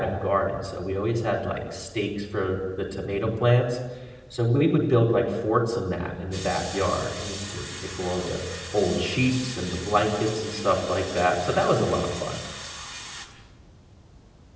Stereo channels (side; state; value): both; identical; correlation 1.00